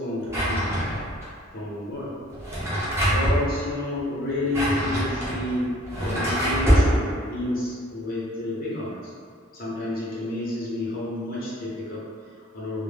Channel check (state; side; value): normal; both; correlation 0.59